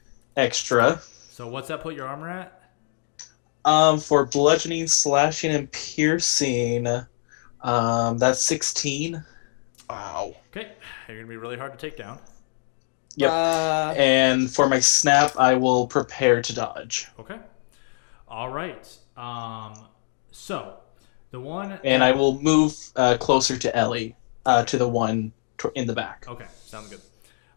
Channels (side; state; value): right; silent; digital silence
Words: extra. So what's that put your armor at? For bludgeoning, slashing, and piercing, that's 16. Ow. Okay. You're gonna be really hard to take down. Yep. Uh, And for my snap, I will prepare to dodge. Okay. All right. So the one. And I will move closer to Ellie, to the one in the back. Okay, sounds good.